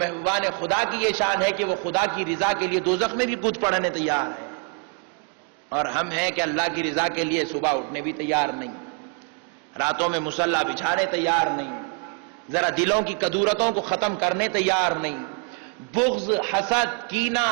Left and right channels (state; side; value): quieter; left; 33.8 dB